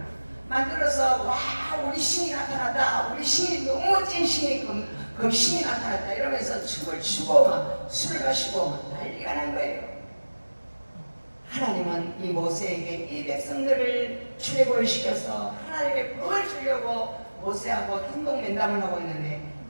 만들어서 와 우리 신이 나타났다, 우리 신이 너무 멋진 신이 금신이 나타났다 이러면서 춤을 추고 막 술을 마시고 막 난리가 난 거예요. 하나님은 이 모세에게 이 백성들을 출애굽을 시켜서 하나님의 복을 주려고 모세하고 행동면담을 하고 있는데,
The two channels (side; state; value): both; inverted; correlation -1.00